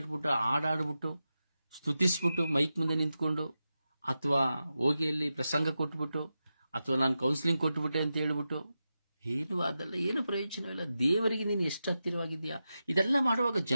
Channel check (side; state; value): both; inverted; correlation -0.91